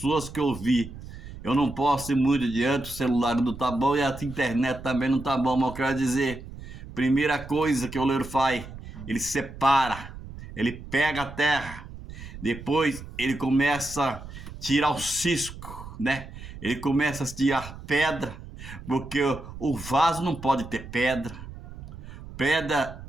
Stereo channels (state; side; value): noise; right; rumble, 13 dB below the sound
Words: que eu vi. Eu não posso ir muito adiante, o celular não tá bom e a internet também não tá bom, mas eu quero dizer, primeira coisa que o oleiro faz, ele separa, ele pega a terra, depois ele começa a tirar o cisco, né? Ele começa a tirar pedra, porque o vaso não pode ter pedra. Pedra